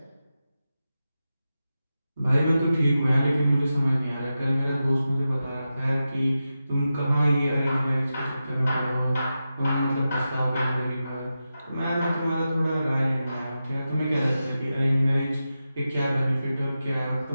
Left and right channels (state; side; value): inverted; both; correlation -0.91